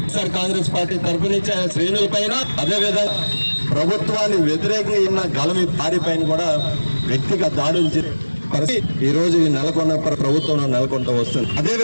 సార్ కాంగ్రెస్ పార్టీ తరఫున శ్రేణుల పైన అదేవిధంగా ప్రభుత్వాన్ని వ్యతిరేకంగా గలమి పారి పైన కూడా వ్యక్తిగత దాడులు ఈ రోజు నెలకొన్న ప్రభుత్వం నెలకొంటూ వస్తుంది. అదే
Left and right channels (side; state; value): both; inverted; correlation -1.00